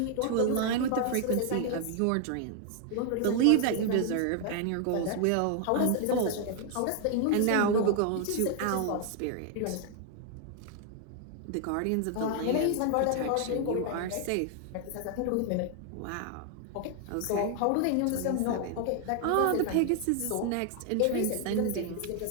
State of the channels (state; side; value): different; both; correlation 0.00